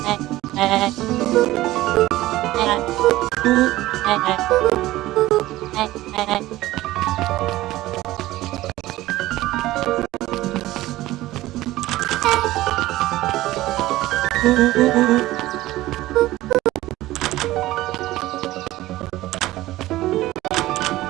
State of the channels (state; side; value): quieter; left; 16.8 dB